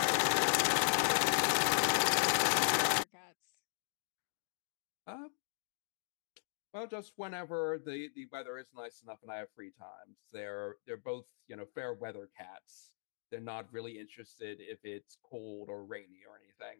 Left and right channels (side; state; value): right; silent; digital silence